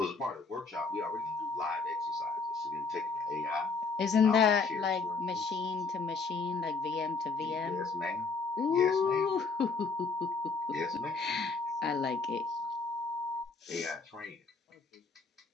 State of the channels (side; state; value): right; quieter; 4.3 dB